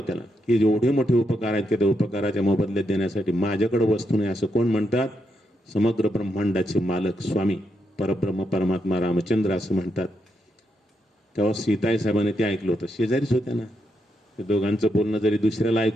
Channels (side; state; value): both; normal; correlation 0.81